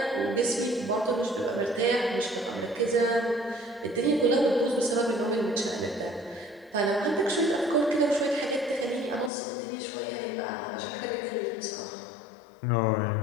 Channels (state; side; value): drops out; right; at 9.3 s